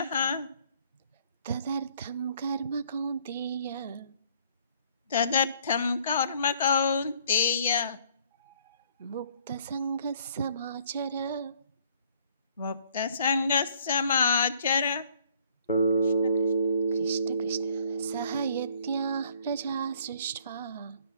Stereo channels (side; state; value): both; inverted; correlation -0.61